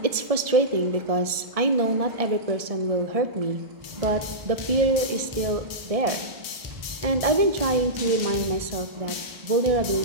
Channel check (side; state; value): left; late; 1.7 ms